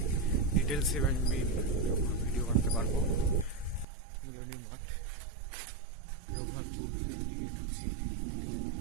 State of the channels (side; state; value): left; drops out; at 3.9 s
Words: ডিটেলসে আমি ভিডিও বানাতে পারবো। মিলনী মাঠ, রঘুনাথপুর দিকে ঢুকছি।